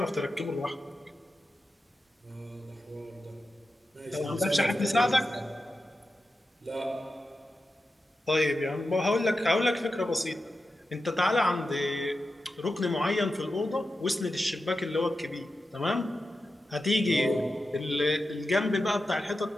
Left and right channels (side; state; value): both; normal; correlation 0.91